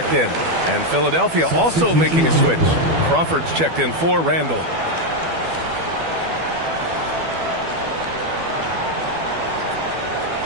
in. And Philadelphia also making a switch. Crawford's checked in for Randall.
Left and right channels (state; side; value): late; left; 12 ms